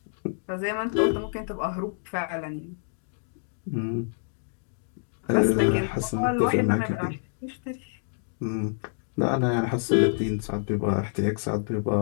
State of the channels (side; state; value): right; silent; digital silence